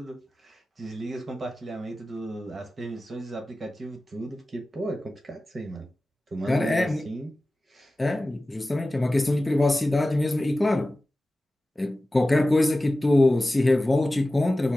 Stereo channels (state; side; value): normal; both; correlation 0.96